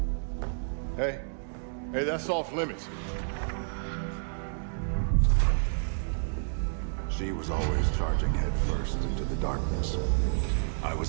Hey, that's off limits. She was always charging headfirst into the darkness. I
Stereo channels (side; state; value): left; silent; digital silence